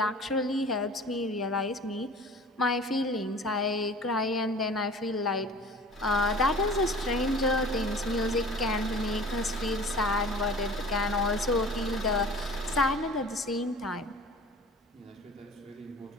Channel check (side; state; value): both; normal; correlation 0.43